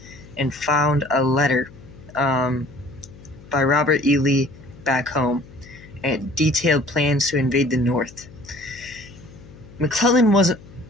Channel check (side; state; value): left; noise; hum, 20 dB below the sound